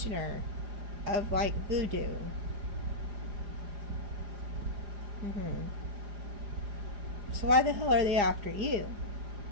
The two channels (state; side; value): late; left; 4.9 ms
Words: of like voodoo. So why the hell are they after you?